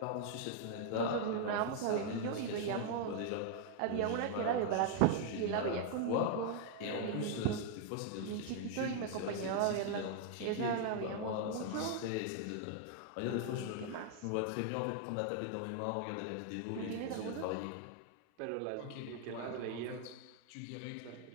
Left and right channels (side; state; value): both; different; correlation 0.00